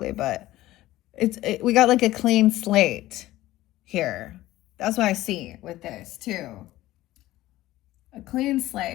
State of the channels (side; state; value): right; quieter; 16.1 dB